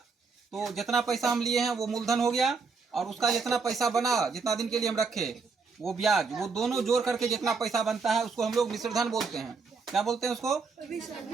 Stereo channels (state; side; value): quieter; left; 4.8 dB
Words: तो जितना पैसा हम लिए हैं वो मूलधन हो गया और उसका जितना पैसा बना, जितना दिन के लिए हम रखे वो ब्याज, वो दोनों जोड़ करके जितना पैसा बनता है उसको हम लोग मिश्र धन बोलते हैं। क्या बोलते हैं उसको?